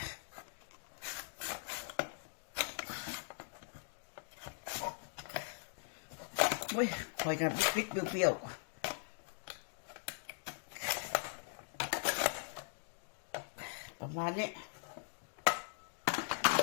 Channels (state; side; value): silent; right; digital silence